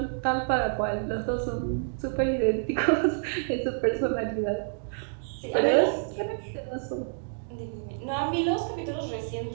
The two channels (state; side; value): silent; left; digital silence